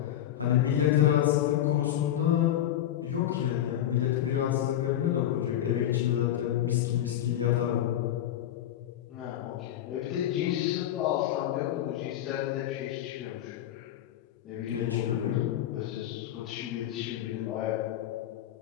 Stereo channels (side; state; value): right; quieter; 11.8 dB